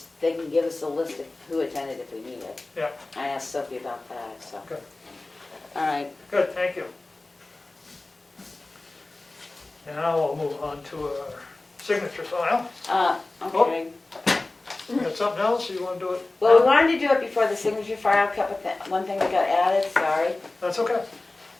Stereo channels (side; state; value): right; quieter; 3.0 dB